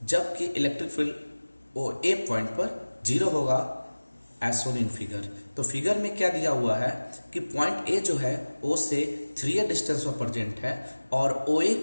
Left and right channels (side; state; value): both; inverted; correlation -1.00